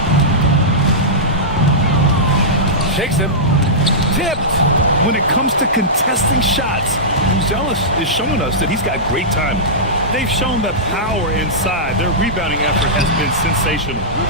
Shakes him. Tipped. When it comes to contesting shots, Buzelis is showing us that he's got great timing. They've shown that power inside. Their rebounding effort has been sensational.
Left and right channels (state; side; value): normal; both; correlation -0.14